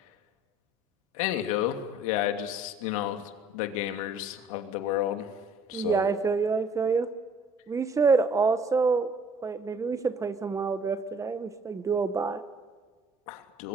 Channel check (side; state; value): both; normal; correlation 0.55